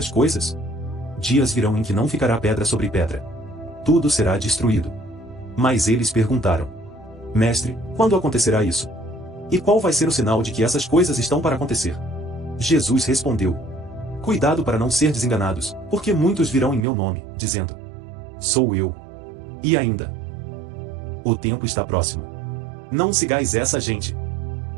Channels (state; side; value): drops out; left; at 16.9 s